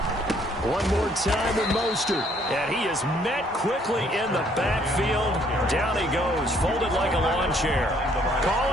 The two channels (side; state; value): both; normal; correlation 0.64